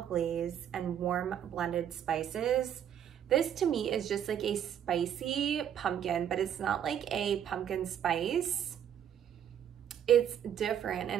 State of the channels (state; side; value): quieter; left; 9.5 dB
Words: glaze, and warm blended spices. This to me is just like a spicy pumpkin, but it's not like a pumpkin spice. It's different,